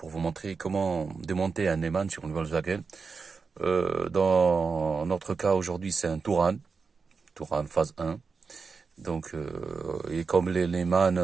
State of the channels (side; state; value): left; quieter; 4.9 dB